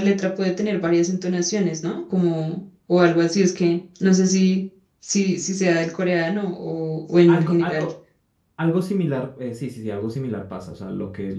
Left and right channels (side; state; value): both; identical; correlation 1.00